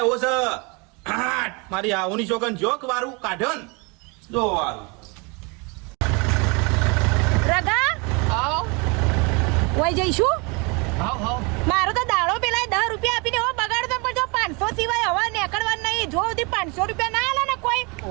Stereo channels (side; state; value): left; quieter; 29.9 dB